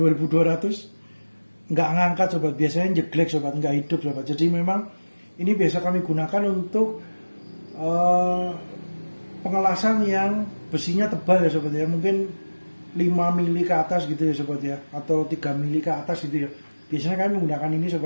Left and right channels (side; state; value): both; inverted; correlation -1.00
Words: nggak ngangkat sobat. Biasanya jeglek sobat, nggak hidup sobat. Jadi memang ini biasa kami gunakan untuk pengelasan yang besinya tebal ya sobat ya. Mungkin 5 mili ke atas gitu ya sobat ya, atau 3 mili ke atas gitu ya. Biasanya kami menggunakan ini